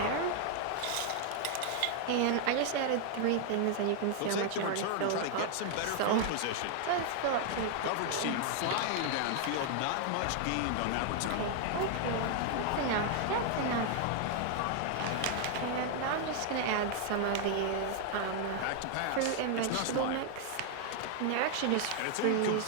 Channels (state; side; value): different; both; correlation 0.00